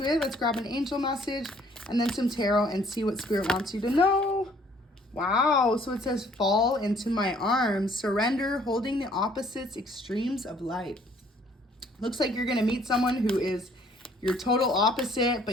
it. Let's grab an angel message and then some tarot and see what Spirit wants you to know. Wow, so it says, fall into my arms, surrender, holding the opposites, extremes of life. Looks like you're going to meet someone who is your total opposite,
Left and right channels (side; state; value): both; normal; correlation 0.60